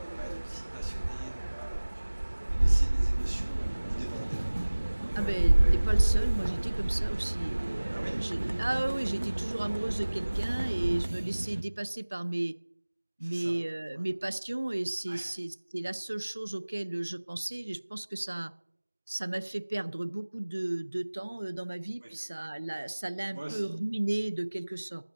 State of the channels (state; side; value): inverted; both; correlation -1.00